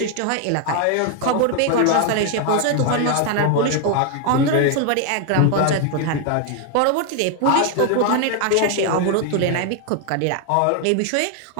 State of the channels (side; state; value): both; different; correlation 0.01